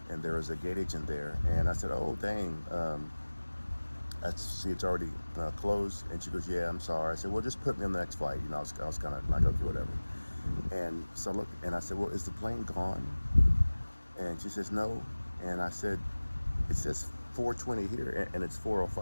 And there was a gate agent there, and I said, oh, dang, it's already closed. And she goes, yeah, I'm sorry. I said, well, just put me on the next flight. I was kind of like, okay, whatever. And so I looked, and I said, well, is the plane gone? And she says, no. And I said, it says 4:20 here, and it's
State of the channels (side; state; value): both; inverted; correlation -1.00